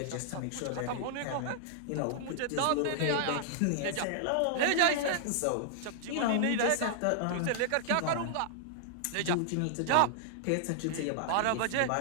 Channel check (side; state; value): both; different; correlation -0.01